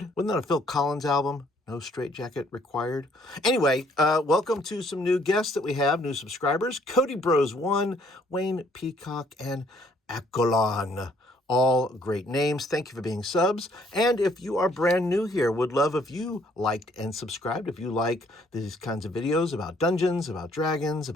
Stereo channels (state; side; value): normal; both; correlation 0.64